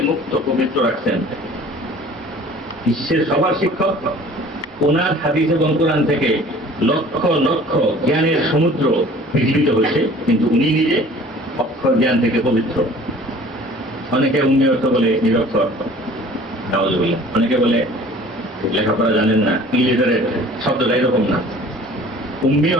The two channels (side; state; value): both; normal; correlation 0.48